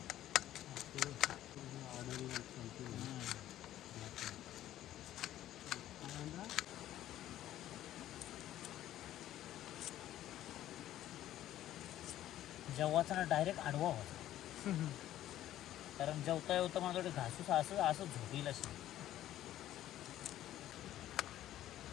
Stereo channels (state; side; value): quieter; right; 13.1 dB